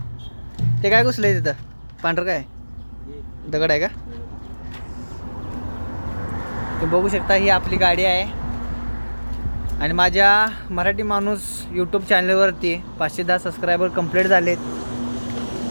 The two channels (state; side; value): inverted; both; correlation -1.00